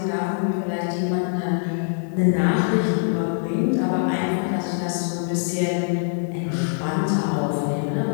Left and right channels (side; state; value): right; silent; digital silence